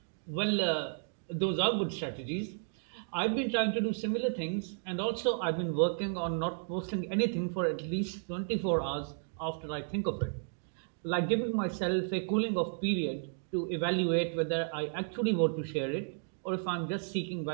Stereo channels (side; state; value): left; silent; digital silence